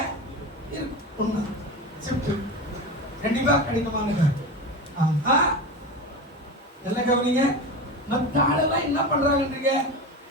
இருக்கும். ஷிஃப்ட் கண்டிப்பா கடினமானது. ஆமா நல்ல கவனிங்க. மற்ற ஆளெல்லாம் என்ன பண்றாங்கன்றீங்க?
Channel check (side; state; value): both; normal; correlation 0.25